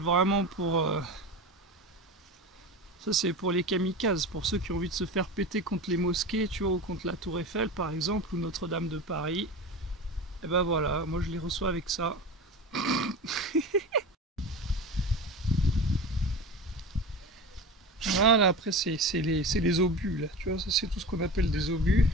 pour... Ça c'est pour les kamikazes, pour ceux qui ont envie de se faire péter contre les mosquées, tu vois, ou contre la Tour Eiffel par exemple, ou Notre-Dame de Paris. Et ben voilà, moi je les reçois avec ça. Voilà, après c'est les obus là, tu vois, ça c'est tout ce qu'on appelle des obus.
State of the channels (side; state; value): both; normal; correlation 0.29